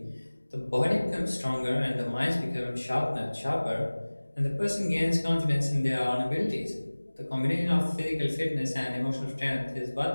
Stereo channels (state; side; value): inverted; both; correlation -1.00